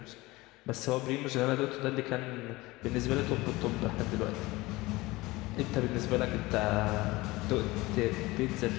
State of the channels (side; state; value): right; quieter; 20.8 dB